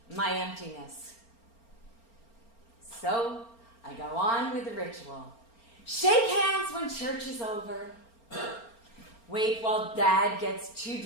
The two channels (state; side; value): late; right; 4.4 ms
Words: my emptiness. So I go on with the ritual. Shake hands when church is over. Wait while Dad gets too